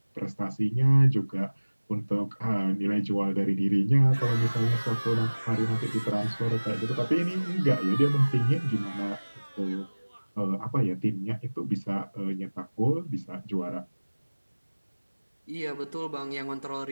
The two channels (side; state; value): both; inverted; correlation -1.00